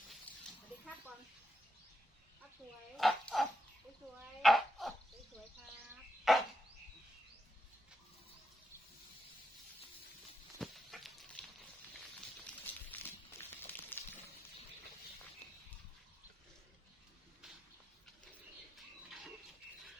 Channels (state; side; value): normal; both; correlation 0.86